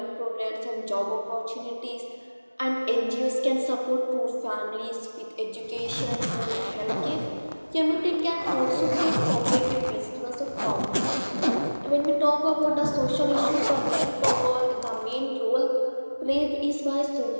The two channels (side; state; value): both; inverted; correlation -1.00